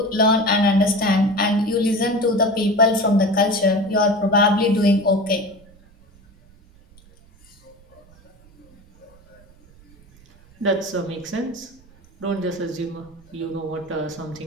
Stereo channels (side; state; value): right; noise; rumble, 27 dB below the sound